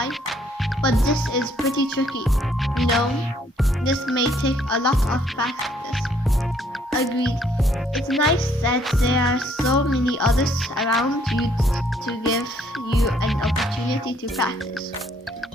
but this is pretty tricky. You know, this may take a lot of practice. Agreed. It's nice that there are so many others around you to give you an opportunity to practice.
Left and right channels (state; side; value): normal; both; correlation 0.66